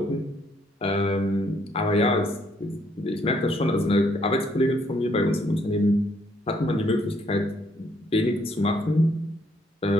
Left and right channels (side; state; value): both; normal; correlation 0.69